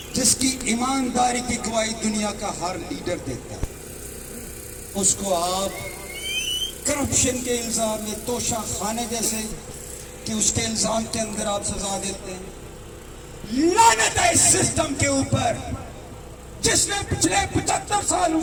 جس کی ایمانداری کی گواہی دنیا کا ہر لیڈر دیتا ہے، اس کو آپ کرپشن کے الزام میں توشہ خانے جیسے کہ اس کے الزام کے اندر آپ سزا دیتے ہیں۔ لعنت ہے اس سسٹم کے اوپر جس نے پچھلے 75 سالوں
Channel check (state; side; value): identical; both; correlation 1.00